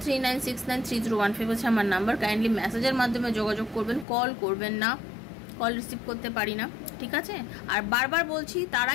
হচ্ছে আমার নাম্বার। কাইন্ডলি মেসেজের মাধ্যমে যোগাযোগ করবেন, কল করবেন না, কল রিসিভ করতে পারি না, ঠিক আছে? আর বারবার বলছি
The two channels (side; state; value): right; drops out; at 4.0 s